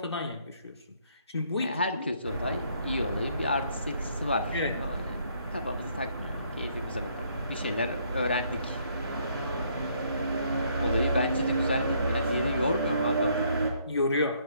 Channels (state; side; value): inverted; both; correlation -0.67